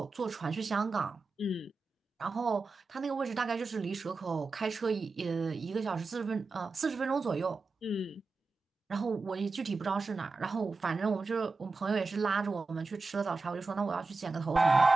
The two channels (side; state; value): left; quieter; 3.8 dB